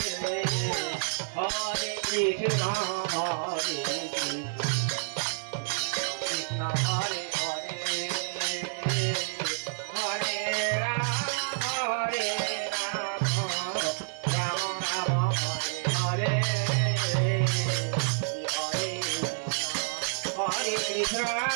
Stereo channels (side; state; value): left; silent; 59 dB below the other